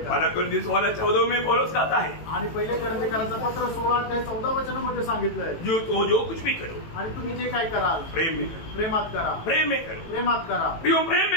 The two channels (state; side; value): late; right; 18 ms